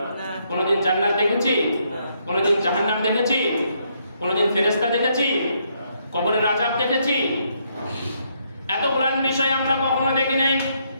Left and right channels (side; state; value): both; inverted; correlation -0.74